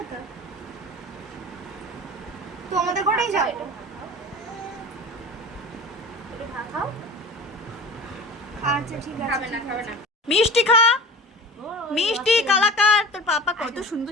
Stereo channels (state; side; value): normal; both; correlation 0.36